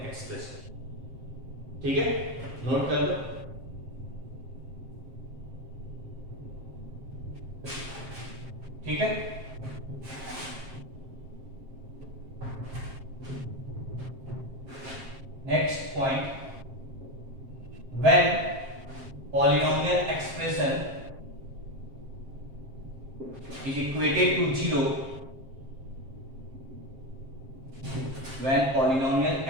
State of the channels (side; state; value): left; late; 7.6 ms